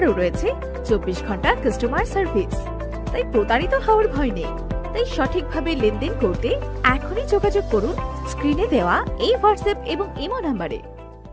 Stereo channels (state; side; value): identical; both; correlation 1.00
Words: রয়েছে 24 ঘন্টা কাস্টমার সার্ভিস, তাই প্রতারিত হওয়ার ভয় নেই। তাই সঠিকভাবে লেনদেন করতে এখনই যোগাযোগ করুন স্ক্রিনে দেওয়া এই হোয়াটসঅ্যাপ এবং ইমো নাম্বারে।